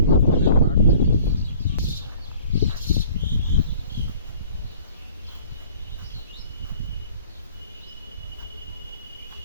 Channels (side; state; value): both; inverted; correlation -0.51